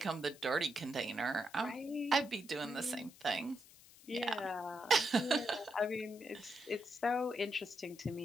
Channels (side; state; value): left; noise; hiss, 22 dB below the sound